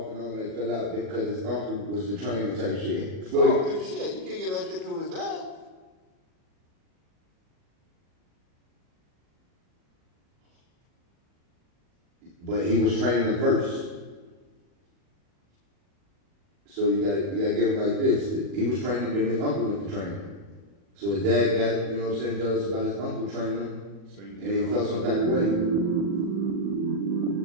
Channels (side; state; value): left; late; 40 ms